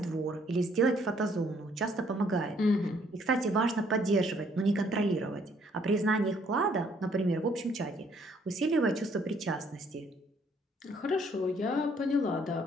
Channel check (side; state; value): both; normal; correlation 0.65